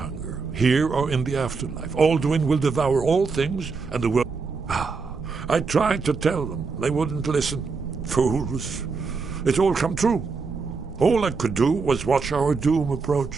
here or in the afterlife. Alduin will devour all things, and the world... I tried to tell them. They wouldn't listen. Fools. It's all come true. All I could do was watch our doom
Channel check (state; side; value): quieter; left; 4.7 dB